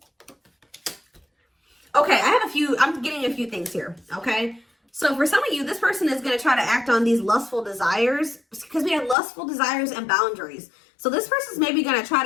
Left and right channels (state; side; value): drops out; right; at 9.2 s